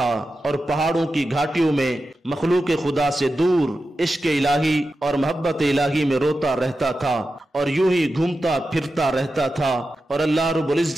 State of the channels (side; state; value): both; normal; correlation 0.91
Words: اور پہاڑوں کی گھاٹیوں میں مخلوق خدا سے دور عشق الہی اور محبت الہی میں روتا رہتا تھا، اور یوں ہی گھومتا پھرتا رہتا تھا، اور اللہ رب